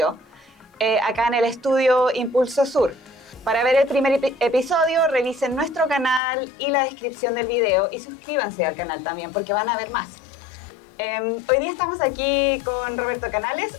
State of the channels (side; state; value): right; drops out; at 6.2 s